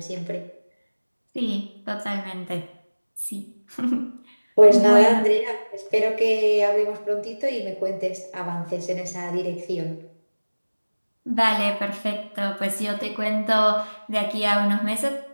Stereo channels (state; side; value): inverted; both; correlation -1.00